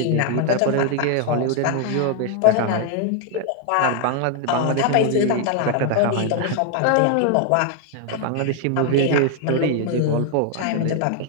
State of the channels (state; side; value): different; both; correlation 0.00